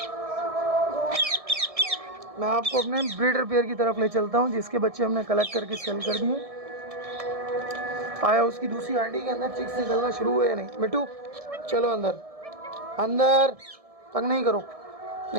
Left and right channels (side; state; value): left; late; 1.7 ms